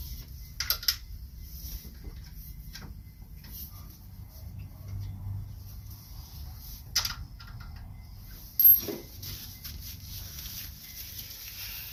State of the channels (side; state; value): both; identical; correlation 1.00